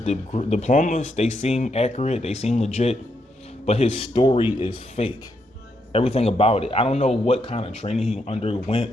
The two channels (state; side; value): normal; both; correlation 0.79